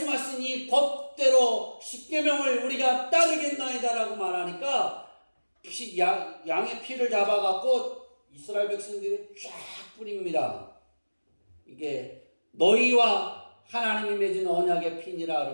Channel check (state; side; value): inverted; both; correlation -1.00